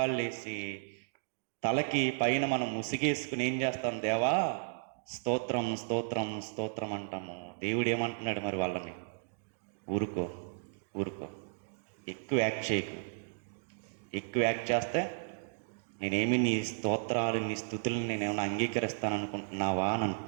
వేసి తలకి పైన మనం ముసిగేసుకుని ఏం చేస్తాం? దేవా స్తోత్రం స్తోత్రం స్తోత్రం అంటాము. దేవుడు ఏమంటున్నాడు మరి వాళ్ళని? ఊరుకో ఊరుకో, ఎక్కువ యాక్ట్ చేయకు. ఎక్కువ యాక్ట్ చేస్తే నేనేమి నీ స్తోత్రాలు నీ స్తుతులను నేనేమైనా అంగీకరిస్తాను అనుకుంటున్నావా అని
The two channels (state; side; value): silent; left; digital silence